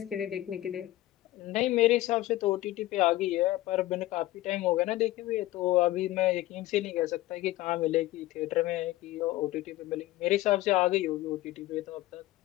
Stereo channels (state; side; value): quieter; right; 16.8 dB